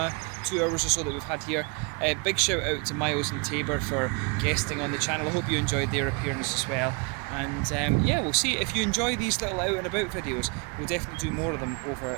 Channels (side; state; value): left; quieter; 30.3 dB